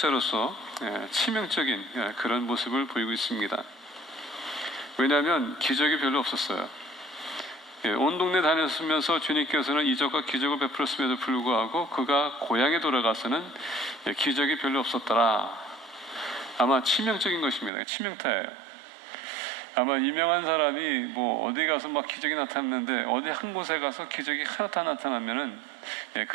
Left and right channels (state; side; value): drops out; left; at 17.7 s